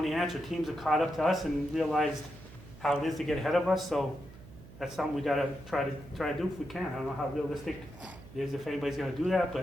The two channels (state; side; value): noise; right; hum, 18 dB below the sound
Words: answer. Teams have caught up to us and realized how it is to get ahead of us. So that's something we got to try to do if we can. I don't know how realistic it is if anybody's going to do that,